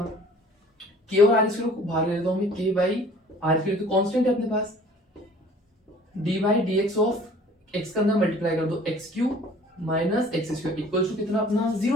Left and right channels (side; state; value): both; normal; correlation 0.50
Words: k और r स्क्वायर को बाहर ले लेता हूं मैं, k बाई r स्क्वायर तो कांस्टेंट है अपने पास, d by dx of x का अंदर मल्टीप्लाई कर दो x cube minus x square equal to कितना अपना